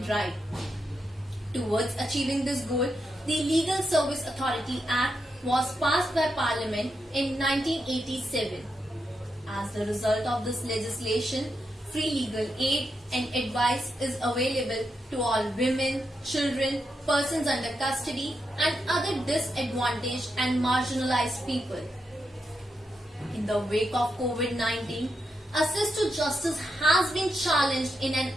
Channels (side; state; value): both; normal; correlation 0.85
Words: right. Towards achieving this goal, the Legal Service Authority Act was passed by Parliament in 1987. As the result of this legislation, free legal aid and advice is available to all women, children, persons under custody and other disadvantaged and marginalized people. In the wake of COVID-19, access to justice has been challenged in an